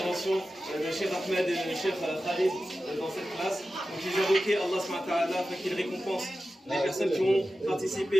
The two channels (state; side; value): normal; both; correlation 0.93